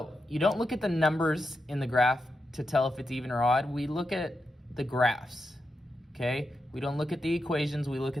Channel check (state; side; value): normal; both; correlation 0.87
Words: you don't look at the numbers in the graph to tell if it's even or odd. We look at the graphs, okay? We don't look at the equations, we look